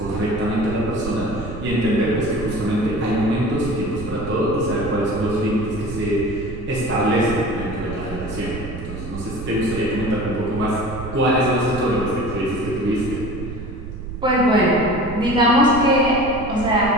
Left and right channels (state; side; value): noise; right; rumble, 9 dB below the sound